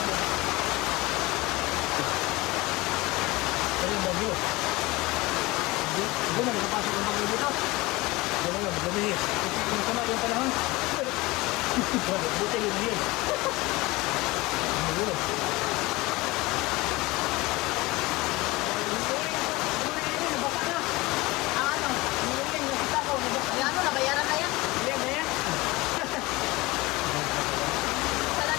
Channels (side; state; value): right; quieter; 21.6 dB